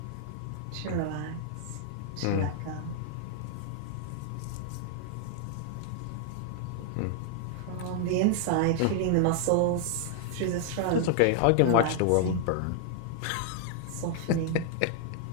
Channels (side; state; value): both; different; correlation 0.00